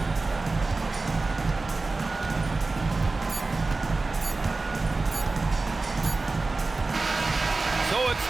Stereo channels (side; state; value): left; quieter; 3.5 dB